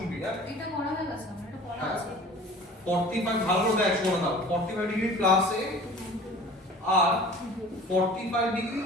হ্যাঁ এটা করা হয়ে গেছে আমার এটা করা আছে 45 ভালো দেখ শোনা দাও 45 ডিগ্রি প্লাস a আর 45 ডিগ্রি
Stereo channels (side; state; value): both; normal; correlation 0.44